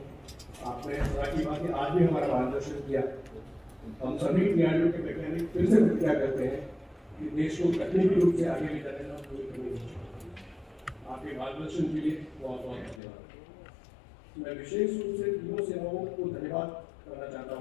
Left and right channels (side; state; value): right; drops out; at 13.0 s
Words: आपने की बात है, आज भी हमारा मार्गदर्शन किया। हम सभी DRDO के वैज्ञानिक फिर से प्रतिज्ञा करते हैं कि देश को तकनीकी रूप से आगे ले जाने का पूरी करनी चाहिए। आपके मार्गदर्शन के लिए बहुत बहुत धन्यवाद। मैं विशेष रूप से तीनों सेनाओं को धन्यवाद करना चाहता